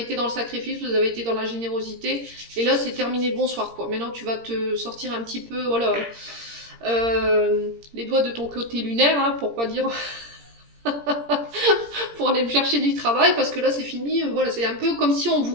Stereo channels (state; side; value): late; left; 17 ms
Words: dans le sacrifice, vous avez été dans la générosité. Et là, c'est terminé, bonsoir, quoi. Maintenant, tu vas te sortir un petit peu, voilà, les doigts de ton côté lunaire, hein, pour pas dire... pour aller me chercher du travail, parce que là, c'est fini. Voilà, c'est un peu comme si on